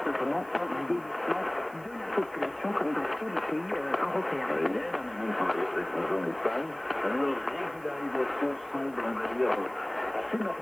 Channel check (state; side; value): noise; right; hiss, 25 dB below the sound